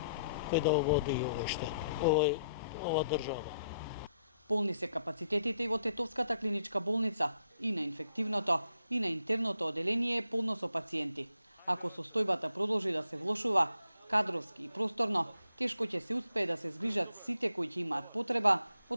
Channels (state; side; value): inverted; both; correlation -0.75